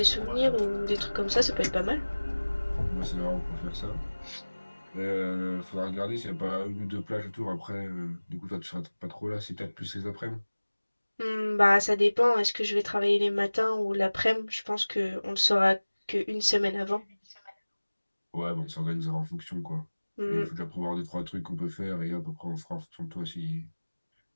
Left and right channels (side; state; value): both; inverted; correlation -1.00